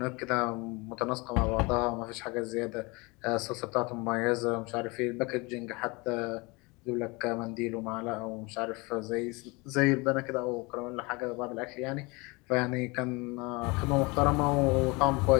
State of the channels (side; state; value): right; quieter; 26.4 dB